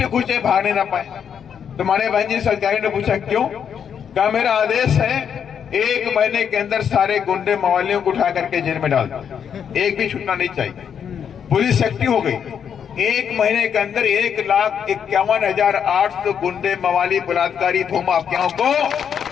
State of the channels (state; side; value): quieter; right; 7.9 dB